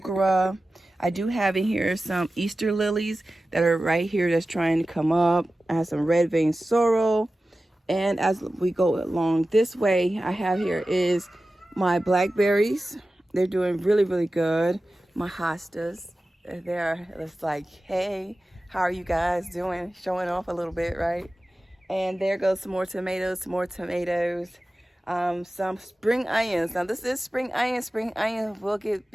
I do have in here some Easter lilies that are right here that's trying to come up. I have some red vein sorrel. And as we go along this way, I have here is my blackberries. They're doing really, really good. My hostas, they're just like, hey, how are you guys doing? Showing off a little bit, right? And there goes some more tomatoes, some spring onions. Now this is spring onion. Spring onion will get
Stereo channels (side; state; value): both; normal; correlation 0.95